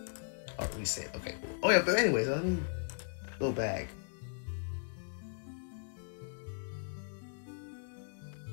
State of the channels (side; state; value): right; silent; digital silence